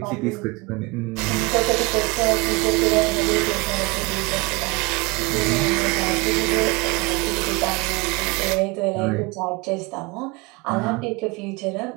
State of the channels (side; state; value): left; quieter; 26.7 dB